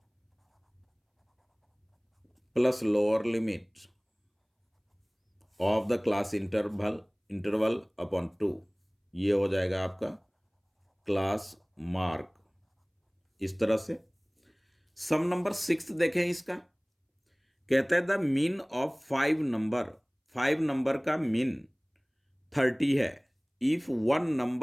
plus lower limit of the class interval upon 2, ये हो जाएगा आपका क्लास मार्क। इस तरह से सम नंबर 6 देखें इसका, कहता है द मीन ऑफ 5 नंबर का मीन 30 है। If one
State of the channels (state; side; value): identical; both; correlation 1.00